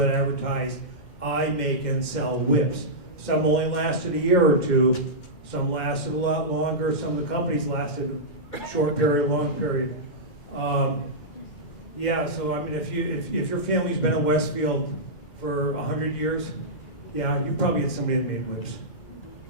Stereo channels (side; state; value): right; late; 2.3 ms